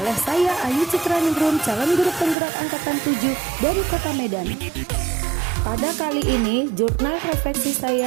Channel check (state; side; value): drops out; left; at 2.4 s